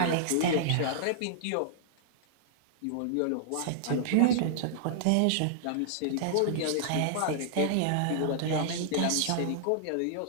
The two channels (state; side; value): different; both; correlation -0.01